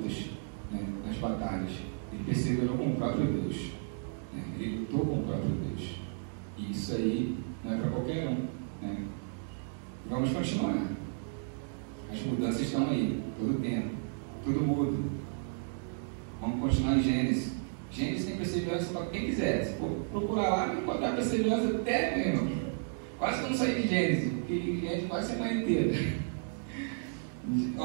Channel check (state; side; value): silent; left; digital silence